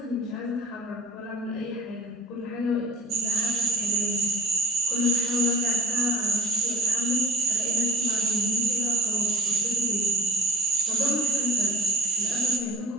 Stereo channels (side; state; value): both; normal; correlation 0.45